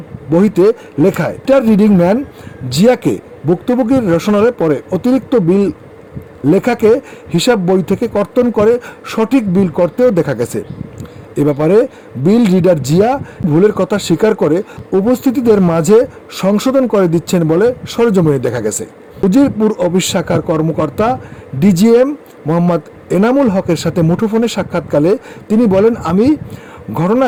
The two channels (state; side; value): identical; both; correlation 1.00